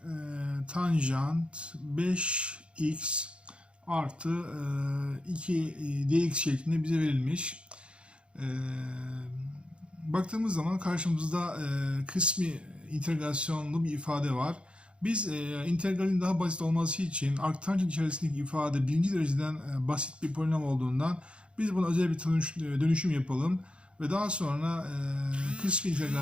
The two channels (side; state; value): left; late; 0.057 ms